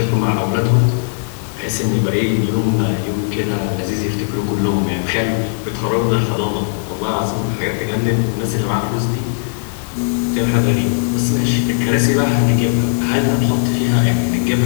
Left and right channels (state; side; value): silent; right; digital silence